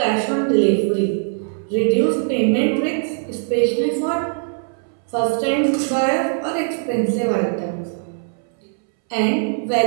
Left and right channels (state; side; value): silent; left; 64 dB below the other